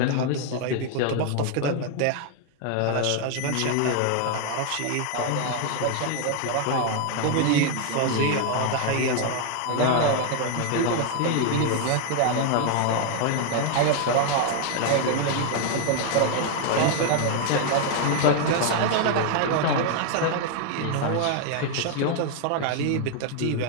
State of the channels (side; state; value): both; different; correlation 0.00